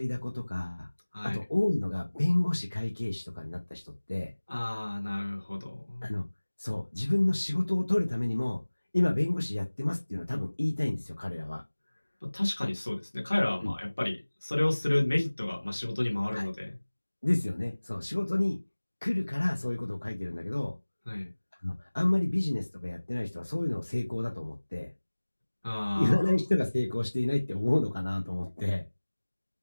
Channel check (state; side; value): inverted; both; correlation -1.00